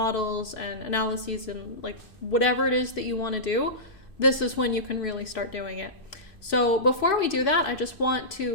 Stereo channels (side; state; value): right; late; 2.6 ms